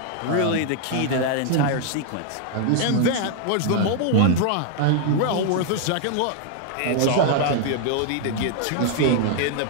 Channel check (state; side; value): different; both; correlation 0.00